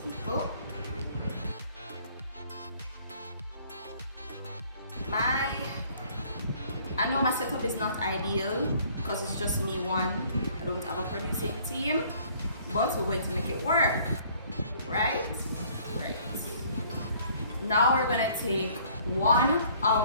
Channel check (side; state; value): both; inverted; correlation -0.58